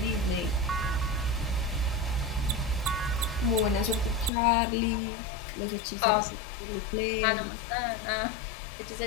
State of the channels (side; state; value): right; drops out; at 4.3 s